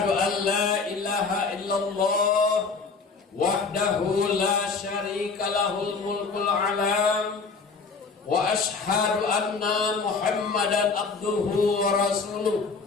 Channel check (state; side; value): quieter; right; 4.7 dB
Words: an la ilaha illallah wahdahu la syarika lahul mulkul alam wa asyhadu anna Muhammadan abduhu wa rasuluh